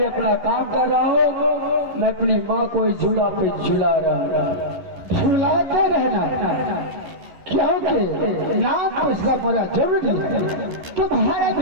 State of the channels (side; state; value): left; late; 11 ms